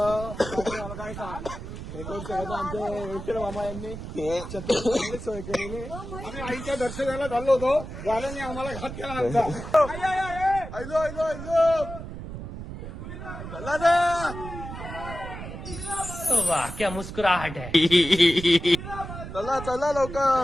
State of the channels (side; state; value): right; noise; rumble, 10 dB below the sound